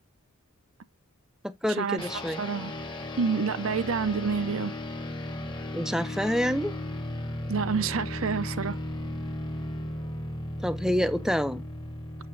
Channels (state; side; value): normal; both; correlation 0.60